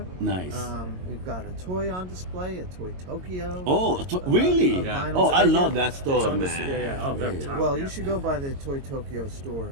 Nice. We've got a toy on display at Toy Tokyo. Oh, really? a vinyl Oh, I figure. love that store, It's on man. yeah. Oh, they're top. Well, you should go by the Toy Tokyo store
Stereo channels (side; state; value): left; late; 22 ms